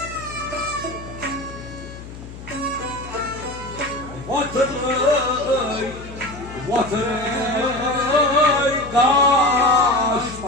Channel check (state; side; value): noise; left; hum, 14 dB below the sound